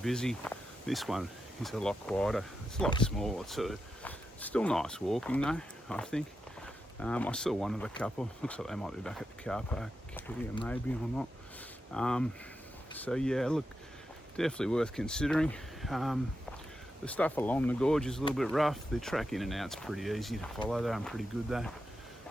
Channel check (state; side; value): normal; both; correlation 0.88